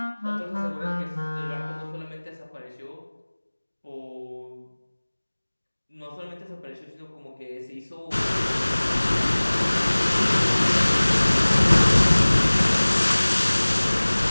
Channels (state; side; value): inverted; both; correlation -1.00